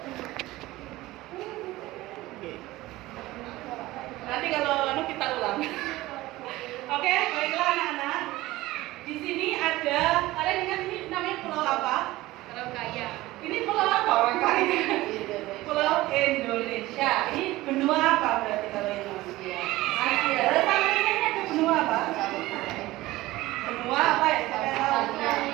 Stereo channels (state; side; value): quieter; left; 18.0 dB